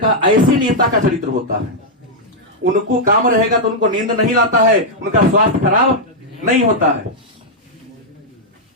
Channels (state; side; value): normal; both; correlation -0.04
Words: ऐसे नेता का चरित्र होता है, उनको काम रहेगा तो उनको नींद नहीं लाता है, उनका स्वास्थ्य खराब नहीं होता है,